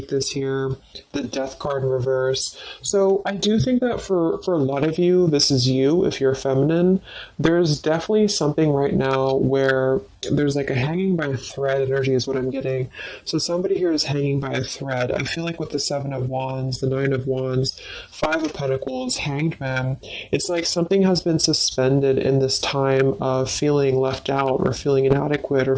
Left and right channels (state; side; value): identical; both; correlation 1.00